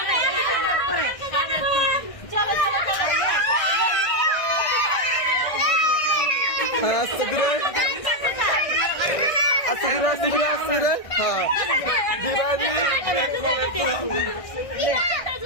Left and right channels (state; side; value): late; right; 1.6 ms